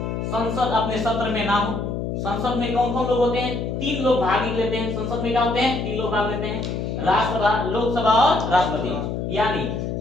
संसद अपने सत्र में ना हो। संसद में कौन कौन लोग होते हैं, 3 लोग भाग लेते हैं। संसद में क्या होते हैं, 3 लोग भाग लेते हैं, राज्यसभा, लोकसभा और राष्ट्रपति। यानी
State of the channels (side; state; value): left; noise; hum, 3 dB below the sound